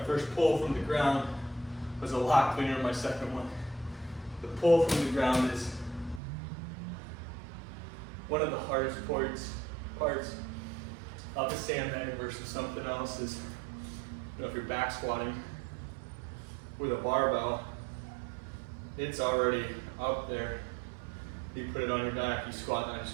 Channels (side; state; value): left; drops out; at 6.2 s